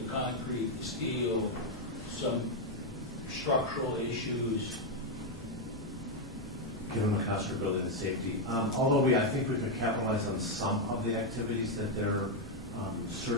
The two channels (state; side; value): normal; both; correlation 0.02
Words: concrete, the steel, some structural issues. Given the cost of building and safety, although I think we could capitalize on some of the activities that they're